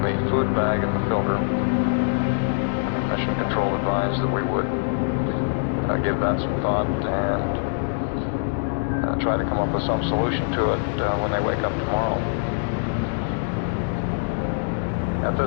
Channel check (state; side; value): silent; right; digital silence